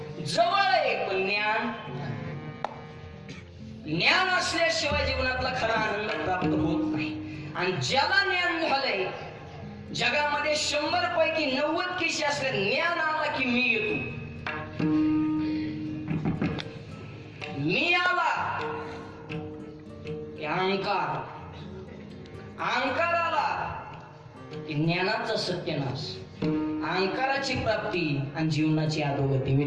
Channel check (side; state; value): both; identical; correlation 1.00